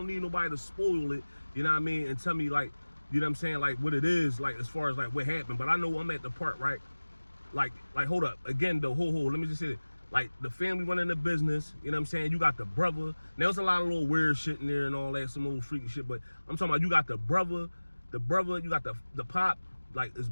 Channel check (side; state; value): both; inverted; correlation -1.00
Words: need nobody to spoil it, you know what I mean, and tell me, like, you know what I'm saying, like, what it is, like, as far as, like, what happened. But I know I'm at the part, right? Like, hold up. Again, though, let me just say it. Like, the family running the business, you know what I'm saying? You got the brother. Now, there's a lot of little weird shit in there and all that, some old freaky shit, but I'm talking about you got the brother, you got the pop, like, his